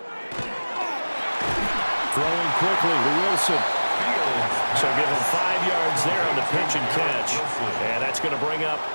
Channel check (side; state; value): both; inverted; correlation -1.00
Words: quickly to Wilson. So give him 5 yards there on the pitch and catch. And that's going to bring up